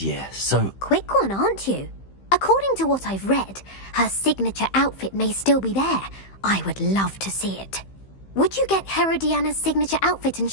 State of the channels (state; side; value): late; right; 15 ms